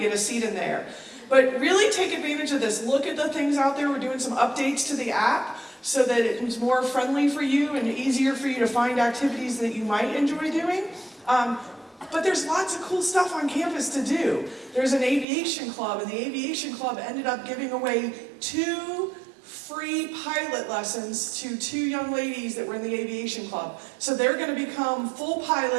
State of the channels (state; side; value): drops out; left; at 15.2 s